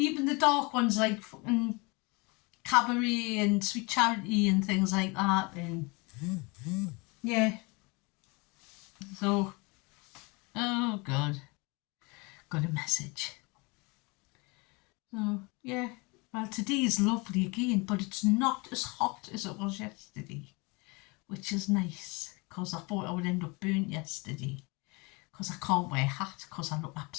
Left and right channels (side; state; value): right; quieter; 27.8 dB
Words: the dark ones like fucking Cabaret and Sweet Charity and things like that. And yeah. So, oh God. Got a message. So, yeah. Well, today is lovely again, but it's not as hot as it was yesterday, which is nice, because I thought I would end up burnt yesterday, because I can't wear a hat, because I look